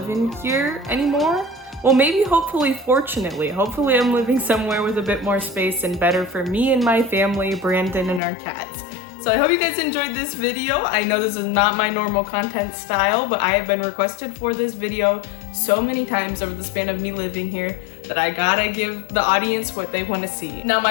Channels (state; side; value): drops out; right; at 8.2 s